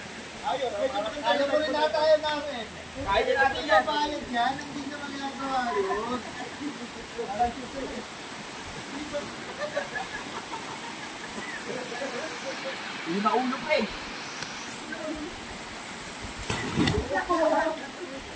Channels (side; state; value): both; identical; correlation 1.00